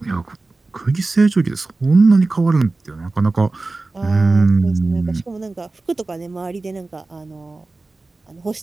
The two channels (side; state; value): left; quieter; 3.4 dB